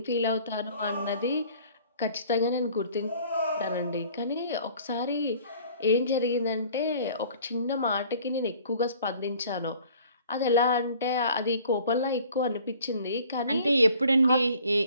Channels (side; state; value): both; inverted; correlation -0.53